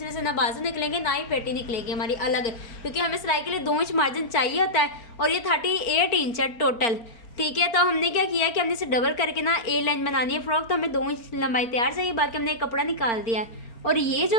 से ना बाजू निकलेंगे ना ही पेटी निकलेगी हमारी अलग, क्योंकि हमें सिलाई के लिए 2 इंच मार्जिन चाहिए होता है और ये 38 इंच है टोटल। ठीक है, तो हमने क्या किया कि हमने इसे डबल करके ना ए लाइन बनानी है फ्रॉक, तो हमें 2 इंच लंबाई तैयार चाहिए। बाकी हमने कपड़ा निकाल दिया है और ये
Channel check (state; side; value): late; right; 4.4 ms